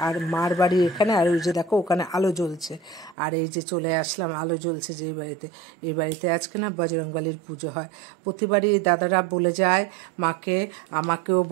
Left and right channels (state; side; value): drops out; left; at 3.2 s